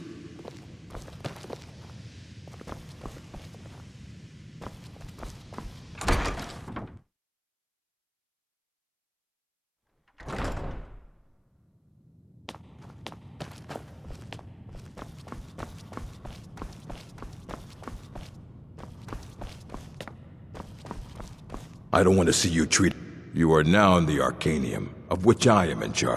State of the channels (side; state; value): both; identical; correlation 1.00